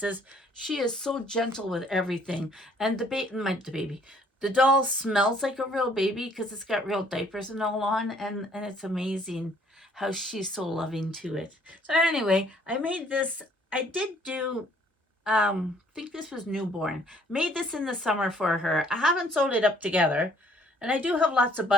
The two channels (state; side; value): normal; both; correlation 0.61